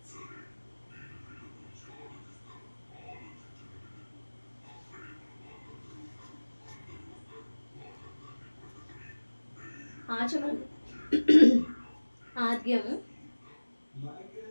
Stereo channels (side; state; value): both; inverted; correlation -1.00